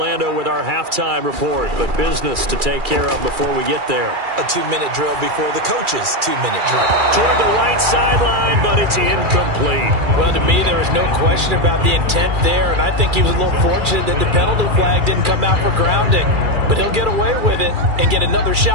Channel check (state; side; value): late; left; 2.4 ms